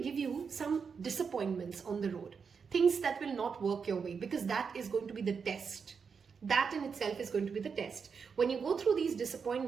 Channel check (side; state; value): left; quieter; 5.9 dB